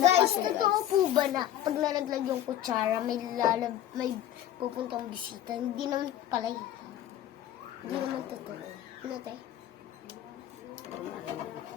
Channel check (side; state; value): right; quieter; 11.8 dB